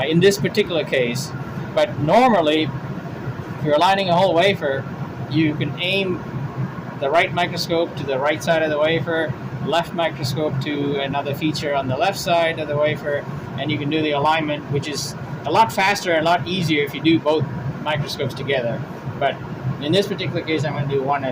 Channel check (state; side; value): identical; both; correlation 1.00